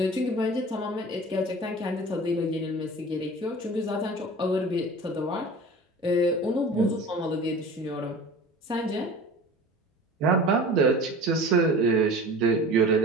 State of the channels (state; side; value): normal; both; correlation 0.39